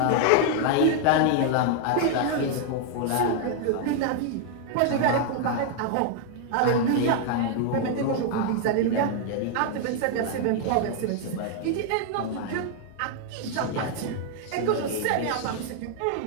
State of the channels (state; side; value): different; both; correlation 0.00